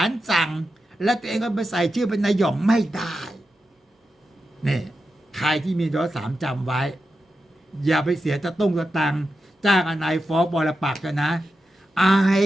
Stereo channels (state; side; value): normal; both; correlation 0.89